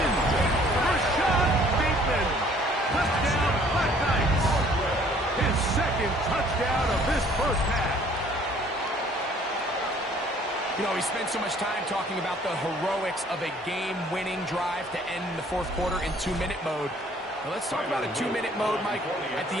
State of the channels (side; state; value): both; normal; correlation 0.58